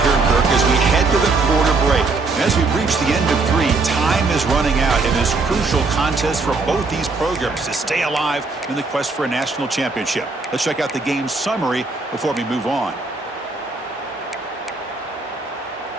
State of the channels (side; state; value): left; quieter; 3.8 dB